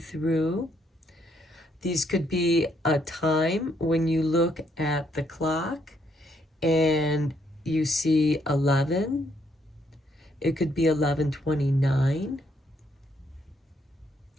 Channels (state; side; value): normal; both; correlation 0.72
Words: These could be a time when you look at the clock and you see 11. It could be 11:29.